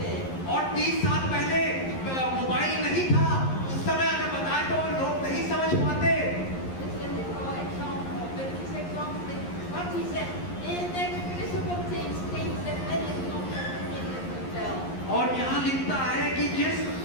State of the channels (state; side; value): late; right; 11 ms